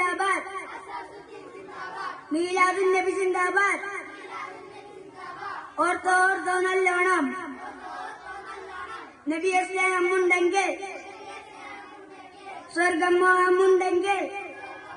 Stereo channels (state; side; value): identical; both; correlation 1.00